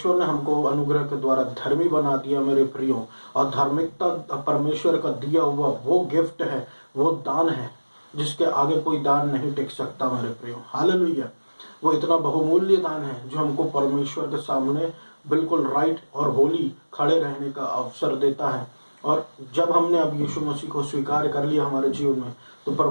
ने हमको अनुग्रह के द्वारा धर्मी बना दिया मेरे प्रियो, और धार्मिकता परमेश्वर का दिया हुआ वो गिफ्ट है, वो दान है जिसके आगे कोई दान नहीं टिक सकता मेरे प्रियो। हालेलुया। वो इतना बहुमूल्य दान है जो हमको परमेश्वर के सामने बिल्कुल राइट और होली खड़े रहने का अवसर देता है। और जब हमने अब यीशु मसीह को स्वीकार कर लिया हमारे जीवन में, तो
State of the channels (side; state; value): both; inverted; correlation -1.00